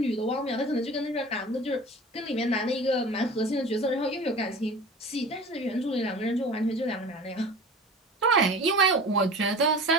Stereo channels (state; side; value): normal; both; correlation 0.38